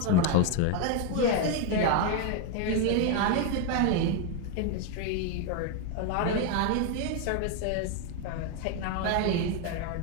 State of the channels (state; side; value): different; both; correlation 0.01